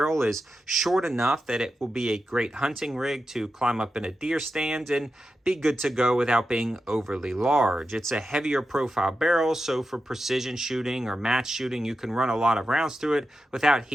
is short enough that it will be a great hunting rig to climb up in a deer stand and be good to go without being overly large. It's a heavier profile barrel, so for precision shooting or match shooting, you can run a lot of rounds through it without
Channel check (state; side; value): normal; both; correlation 0.90